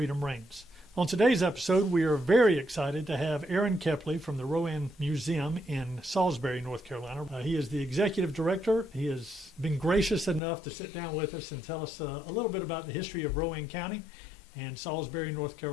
reigns. On today's episode, we are very excited to have Aaron Kepley from the Rowan Museum in Salisbury, North Carolina. He is the executive director. He has been gracious enough to sit down with us and tell us a little bit about the history of Rowan County and Salisbury, North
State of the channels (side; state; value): right; drops out; at 10.4 s